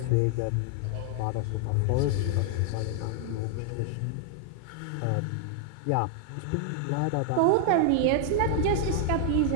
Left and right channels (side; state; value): both; different; correlation 0.00